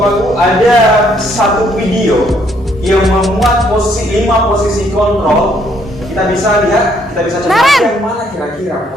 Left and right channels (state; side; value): normal; both; correlation 0.68